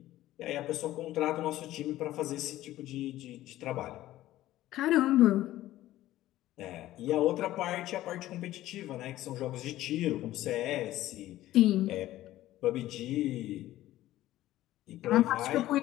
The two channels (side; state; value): right; quieter; 15.0 dB